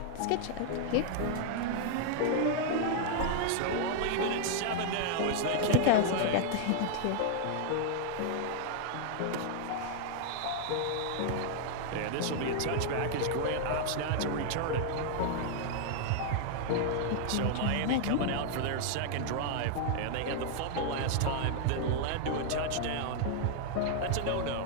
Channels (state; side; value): different; both; correlation 0.00